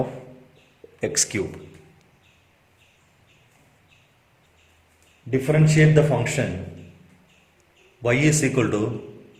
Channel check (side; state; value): both; identical; correlation 1.00